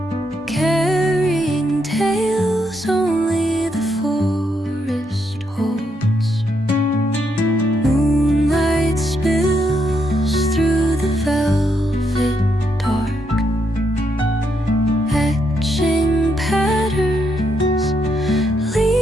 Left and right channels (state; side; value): normal; both; correlation 0.78